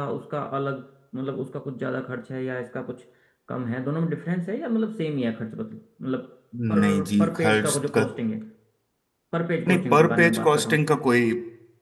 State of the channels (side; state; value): both; identical; correlation 1.00